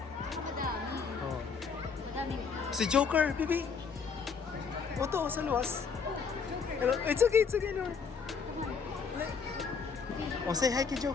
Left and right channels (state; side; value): quieter; right; 5.7 dB